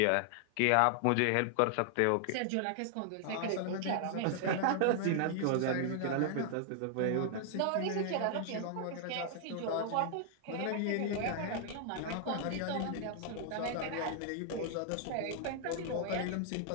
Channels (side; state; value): both; different; correlation 0.00